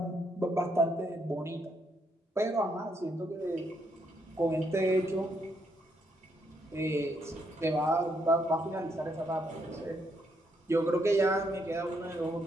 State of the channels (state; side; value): normal; both; correlation 0.75